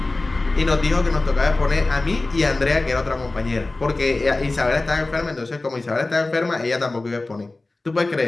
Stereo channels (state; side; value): quieter; right; 3.1 dB